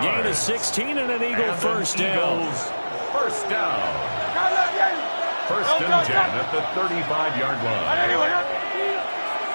of 16 and an Eagle first down. First down. First and 10 at the 35-yard line.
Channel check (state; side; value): inverted; both; correlation -1.00